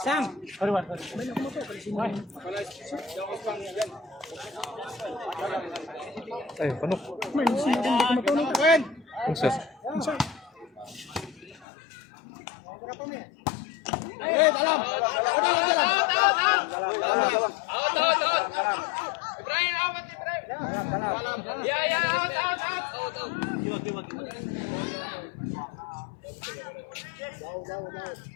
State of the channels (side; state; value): right; drops out; at 11.7 s